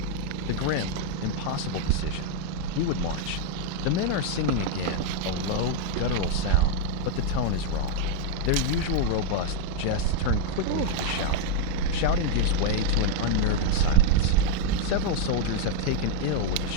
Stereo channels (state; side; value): different; both; correlation 0.00